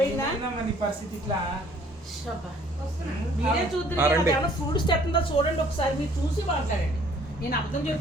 ఏందమ్మా నీ పరిస్థితి ఇట్లా? మీరే రండి. చూద్దరు ఫ్రూట్స్ తెస్తుందా చూడండి ఒకసారి, మీరు చూసి మాట్లాడండి. నేను అర్థం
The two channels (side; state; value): both; normal; correlation 0.58